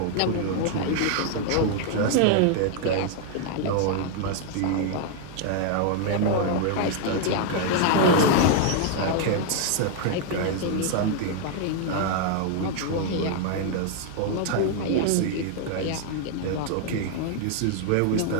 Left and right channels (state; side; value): different; both; correlation 0.00